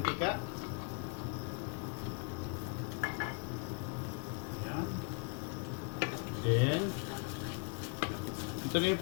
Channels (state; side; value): quieter; right; 35.7 dB